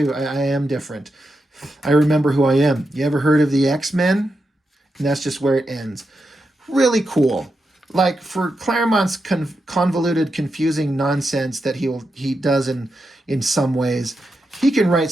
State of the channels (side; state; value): both; normal; correlation 0.87